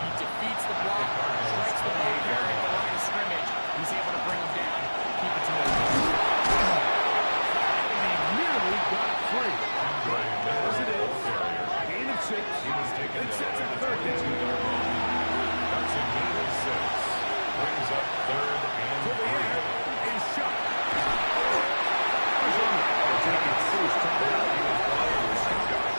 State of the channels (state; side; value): inverted; both; correlation -1.00